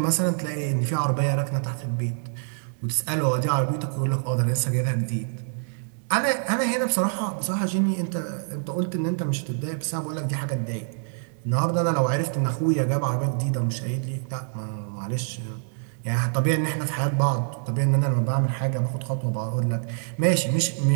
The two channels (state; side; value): silent; left; digital silence